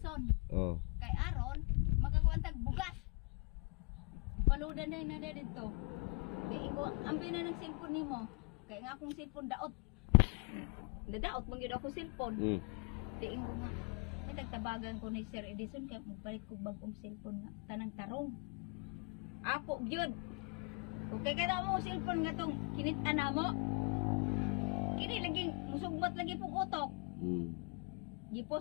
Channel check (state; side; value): quieter; right; 33.2 dB